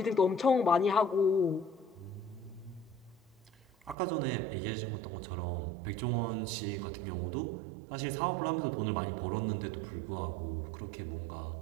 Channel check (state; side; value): drops out; left; at 4.0 s